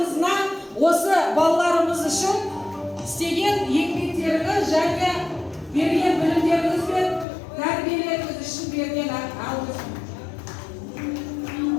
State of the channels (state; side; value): drops out; right; at 7.2 s